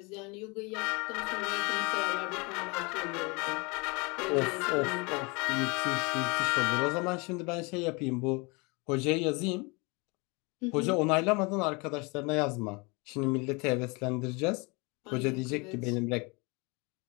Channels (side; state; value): right; quieter; 28.6 dB